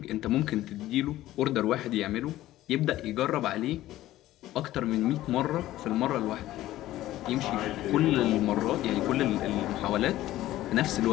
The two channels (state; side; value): quieter; right; 15.0 dB